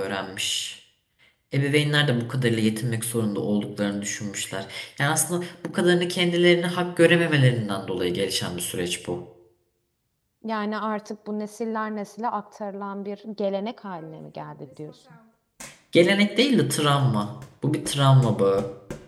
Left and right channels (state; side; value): identical; both; correlation 1.00